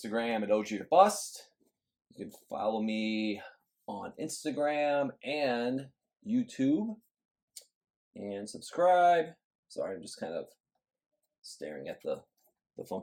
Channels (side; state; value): both; identical; correlation 1.00